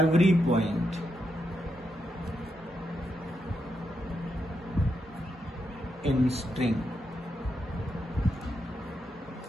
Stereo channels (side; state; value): both; normal; correlation 0.83